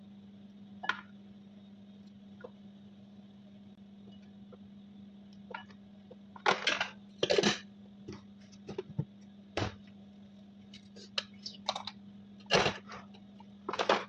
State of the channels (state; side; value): identical; both; correlation 1.00